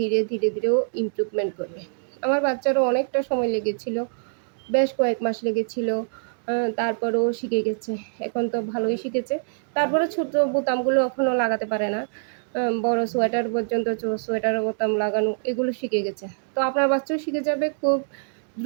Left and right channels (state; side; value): silent; left; digital silence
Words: ধীরে, ধীরে ও ইমপ্রুভমেন্ট করবে। আমার বাচ্চারও অনেকটা সময় লেগেছিল। বেশ কয়েক মাস লেগেছিল। তারপরেও শিখে গেছে। এখন তো ভালোই শিখেছে। তারপরে ছোট বোতামগুলো এখনও লাগাতে পারে না। বড় সোয়েটার পর্যন্ত সোয়েটারের বোতাম লাগানো এগুলো শিখে গেছে। তো আপনার বাচ্চাও শিখে যাবে, খুব